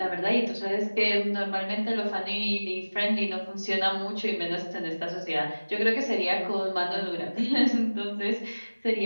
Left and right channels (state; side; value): inverted; both; correlation -1.00